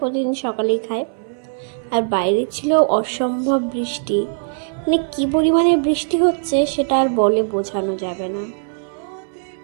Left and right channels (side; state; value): left; silent; 62 dB below the other